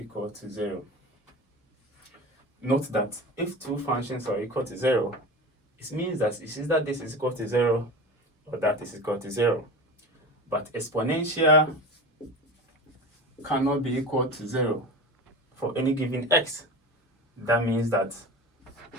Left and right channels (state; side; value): normal; both; correlation 0.31